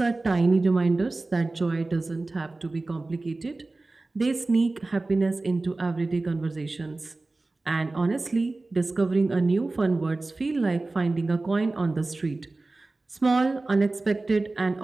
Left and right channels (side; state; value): left; quieter; 3.2 dB